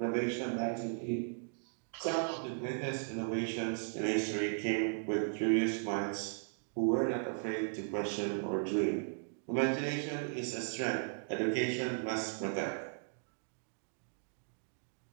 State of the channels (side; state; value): left; silent; digital silence